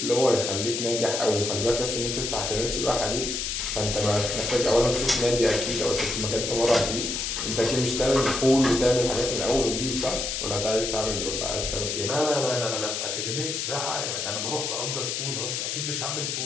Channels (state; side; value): noise; left; hiss, 2 dB below the sound